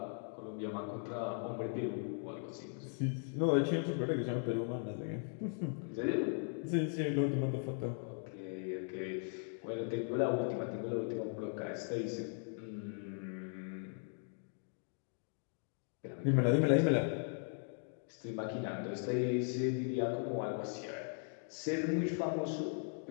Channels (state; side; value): silent; right; 52 dB below the other